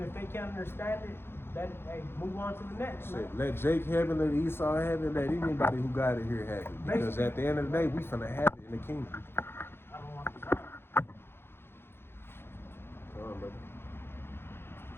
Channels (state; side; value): late; right; 0.11 ms